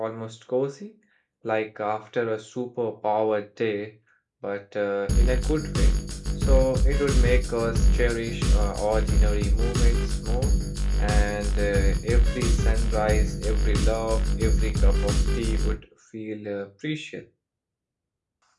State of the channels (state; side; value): identical; both; correlation 1.00